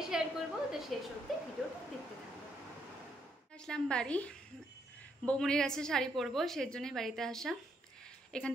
শেয়ার করবো, তো শেষ অবধি ভিডিওটা দেখতে থাকবো। আসলাম বাড়ি, বৌমনির কাছে শাড়ি পরবো, সেই জন্যই বাড়িতে আসা। এখান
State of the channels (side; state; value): both; normal; correlation 0.75